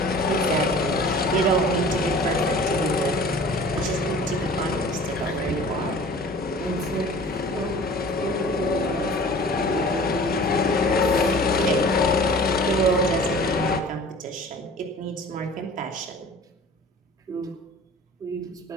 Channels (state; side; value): normal; both; correlation 0.44